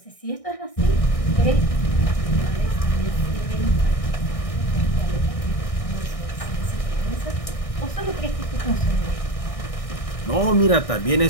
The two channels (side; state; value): right; late; 1.6 ms